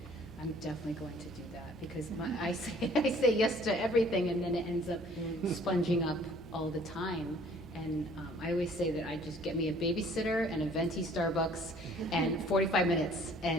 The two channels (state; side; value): noise; left; hum, 21 dB below the sound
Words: I'm definitely going to do that because I say yes to everything, and then it ends up sponging up all the time. And I always say that I just get me a babysitter and a venti Starbucks and 45 minutes,